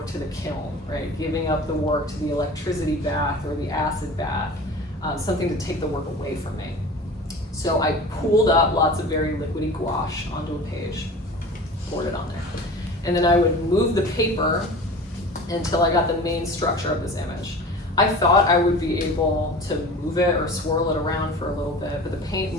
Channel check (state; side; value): normal; both; correlation 0.37